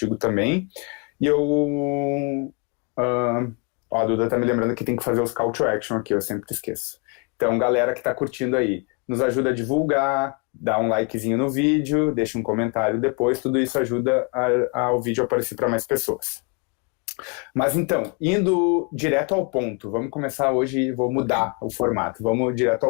também. E a Duda tá me lembrando que tem que fazer os call to action aqui, eu sempre esqueço. Então, galera que tá curtindo aí, nos ajuda a divulgar, dá um likezinho no vídeo, deixa um comentário depois, tudo isso ajuda ao vídeo aparecer para mais pessoas. Mas então, indo direto ao ponto, vamos começar hoje, vou mudar o formato, vamos direto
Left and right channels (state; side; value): quieter; right; 33.2 dB